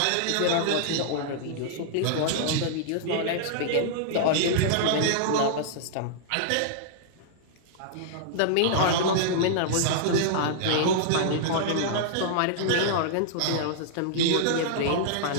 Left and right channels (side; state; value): both; different; correlation -0.02